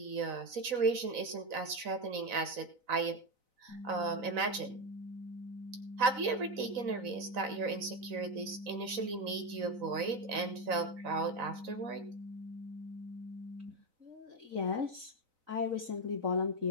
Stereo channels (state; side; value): late; left; 4.0 ms